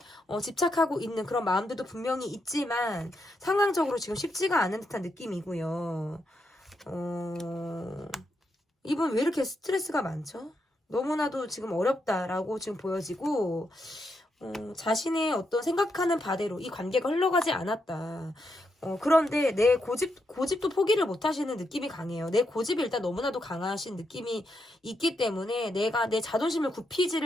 집착하고 있는 그런 마음들도 분명히 있지만 상황적으로 지금 쉽지가 않은 듯한 느낌이고요. 이분 왜 이렇게 스트레스가 많죠? 너무나도 지금 어렵다라고 지금 보여지고, 자신의 어떤 생각하는 바대로 이 관계가 흘러가지 않았다. 그런데 내 고집도 포기를 못 하시는 느낌이 강해요. 내 고집이 일단 너무나도 강하신 느낌이 있기 때문에 내가 내 자존심을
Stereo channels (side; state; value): both; normal; correlation 0.82